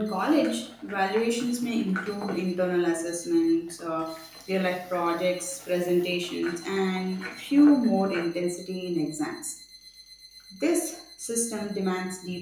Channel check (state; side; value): identical; both; correlation 1.00